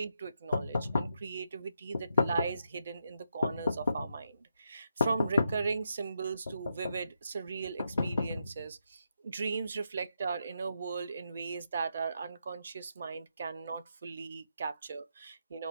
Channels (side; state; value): both; inverted; correlation -0.83